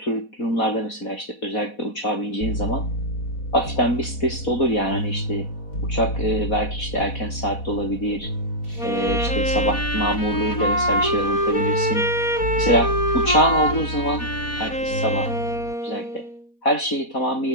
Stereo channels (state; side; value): late; right; 4.1 ms